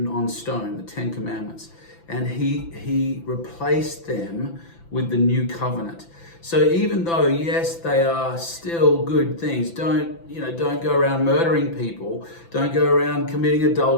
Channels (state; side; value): late; right; 6.0 ms